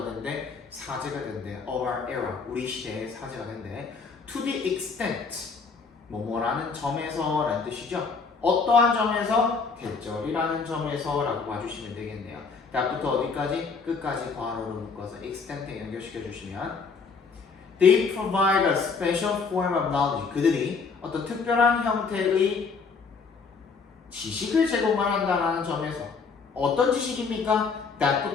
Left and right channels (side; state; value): right; quieter; 5.0 dB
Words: 된대? 사제가 된대. of our era, 우리 시대의 사제가 된대. to the extent, 뭐뭐라는 점에서 라는 뜻이죠. 어떠한 점에서? 대절이라는 점에서 라고 봐주시면 되겠네요. that부터 어디까지? 끝까지 괄호로 묶어서 extent에 연결시켜 주시면 they provide a special form of knowledge. 그들이 어떤 특별한 형태의 지식을 제공한다는 점에서 어떤 지식입니까?